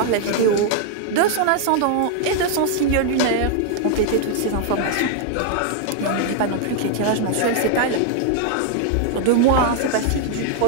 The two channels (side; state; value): both; different; correlation 0.00